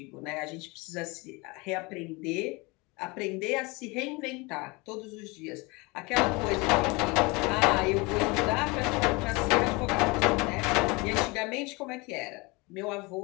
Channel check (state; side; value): quieter; right; 26.0 dB